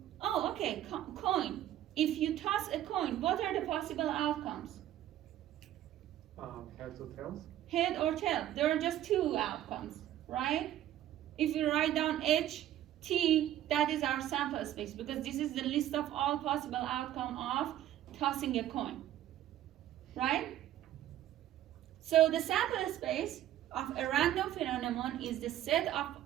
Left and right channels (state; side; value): quieter; left; 12.6 dB